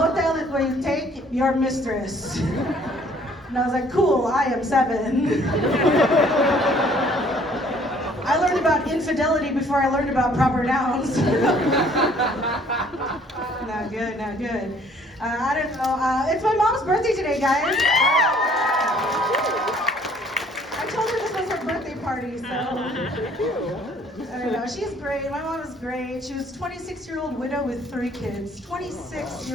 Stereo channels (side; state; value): both; normal; correlation 0.59